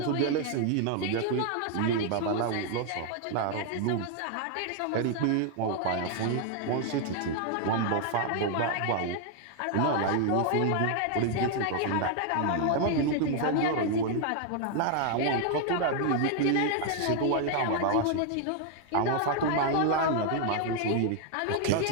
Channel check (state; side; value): different; both; correlation 0.00